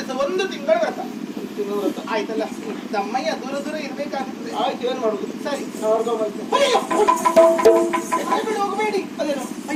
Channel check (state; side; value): identical; both; correlation 1.00